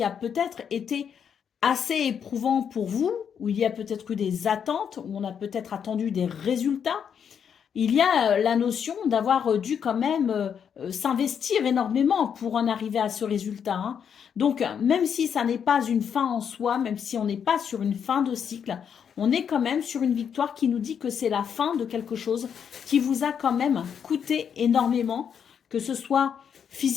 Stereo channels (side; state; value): right; quieter; 7.7 dB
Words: a peut-être été assez éprouvant pour vous, où il y a peut-être eu des attentes, où on a peut-être attendu des résultats. Il y a la notion d'avoir dû quand même s'investir énormément pour en arriver à ce résultat, hein. Donc, même si ça n'est pas une fin en soi, même si on n'est pas sur une fin de cycle, on est quand même sur une victoire qui nous dit que c'est la fin de quelque chose qui vous a quand même coûté énormément, que ce soit